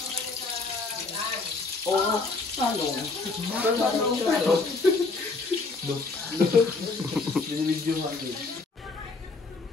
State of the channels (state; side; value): quieter; right; 3.8 dB